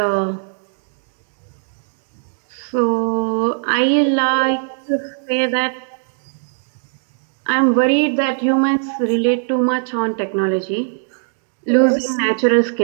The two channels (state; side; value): silent; left; digital silence